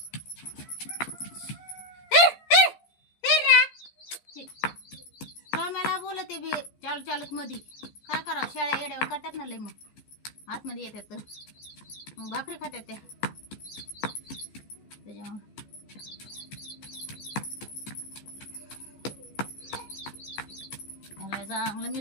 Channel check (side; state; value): right; late; 14 ms